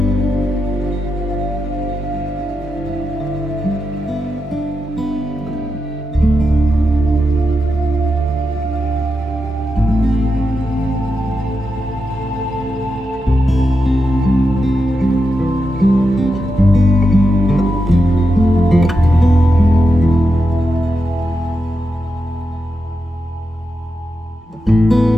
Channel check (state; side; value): normal; both; correlation 0.87